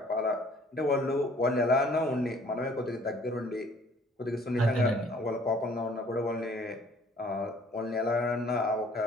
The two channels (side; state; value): both; normal; correlation 0.56